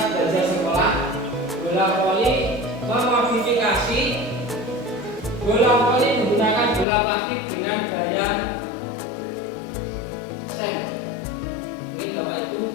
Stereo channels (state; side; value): drops out; right; at 6.9 s